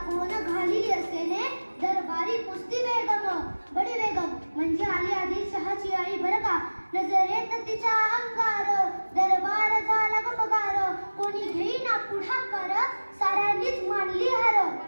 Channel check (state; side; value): inverted; both; correlation -1.00